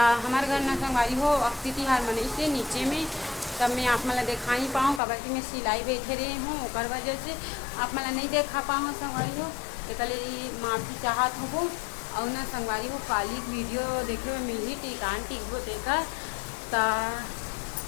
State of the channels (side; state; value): right; drops out; at 5.0 s